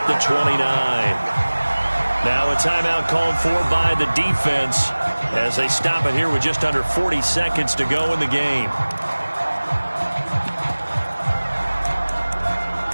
the 29. Now a timeout called for by the defense as they stop it here with just under 40 seconds to go in the game.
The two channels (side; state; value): both; inverted; correlation -1.00